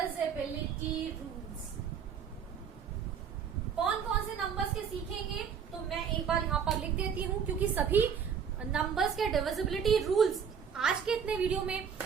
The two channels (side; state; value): left; quieter; 7.2 dB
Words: रूल्स. कौन कौन से नंबर्स के सीखेंगे तो मैं एक बार यहाँ पर लिख देती हूँ, क्योंकि सभी नंबर्स के डिविजिबिलिटी रूल्स आज के इतने वीडियो में